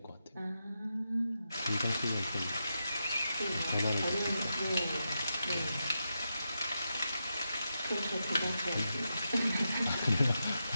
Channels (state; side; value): inverted; both; correlation -0.87